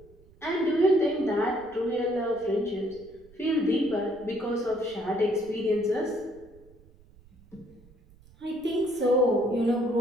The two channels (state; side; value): noise; right; rumble, 25 dB below the sound